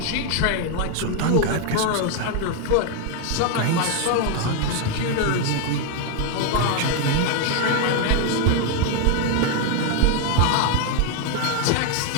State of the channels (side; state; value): both; different; correlation 0.01